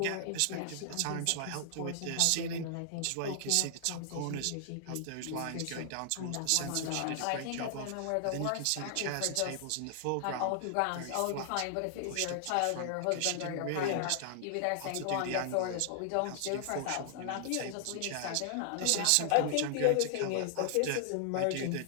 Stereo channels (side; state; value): both; different; correlation -0.01